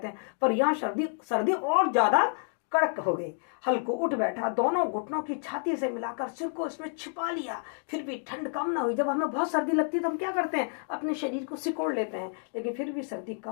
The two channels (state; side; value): silent; right; 58 dB below the other